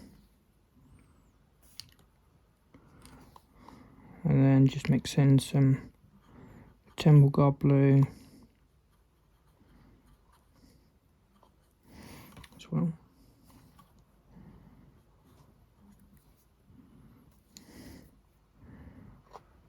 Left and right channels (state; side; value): identical; both; correlation 1.00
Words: And then just mix in some Temple Guard Blue as well.